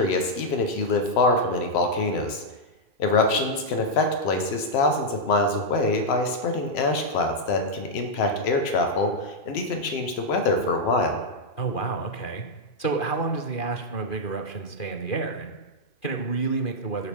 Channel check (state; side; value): late; right; 3.0 ms